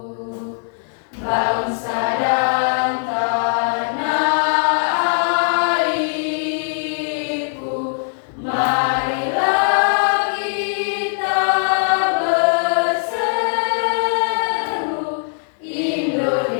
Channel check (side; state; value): right; silent; 66 dB below the other